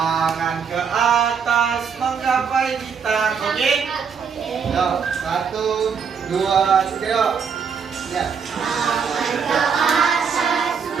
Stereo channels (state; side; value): quieter; left; 6.4 dB